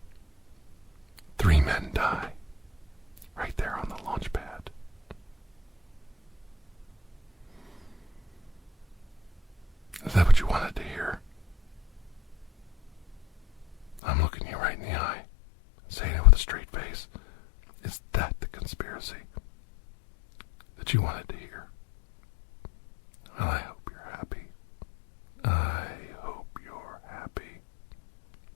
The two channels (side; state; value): right; drops out; at 14.0 s